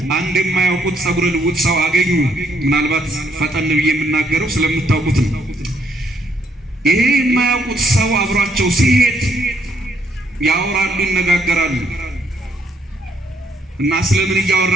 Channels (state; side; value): normal; both; correlation 0.71